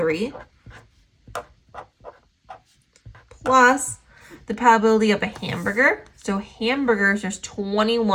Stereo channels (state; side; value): identical; both; correlation 1.00